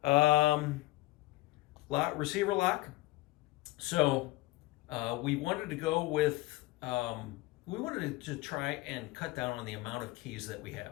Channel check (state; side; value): quieter; right; 19.4 dB